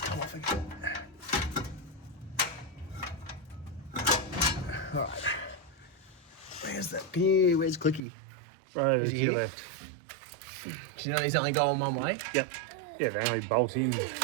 off again. Alright. Where's Clicky? Right, Is to he your here? left. Do you know these only go on one way? Yep. Yeah, they only bolt in.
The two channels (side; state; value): left; drops out; at 8.0 s